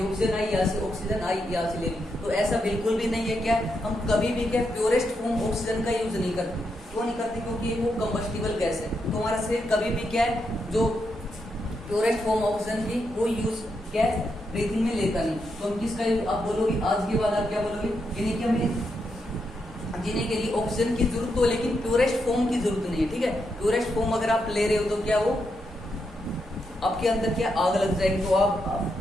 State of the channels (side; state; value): both; normal; correlation 0.82